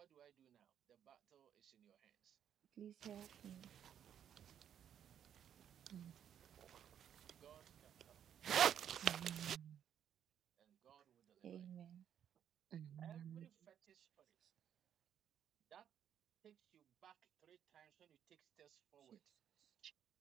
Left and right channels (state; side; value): quieter; left; 9.3 dB